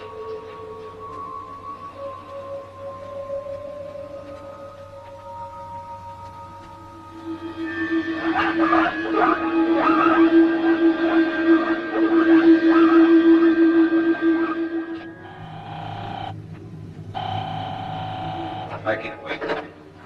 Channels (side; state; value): both; identical; correlation 1.00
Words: I can't wait.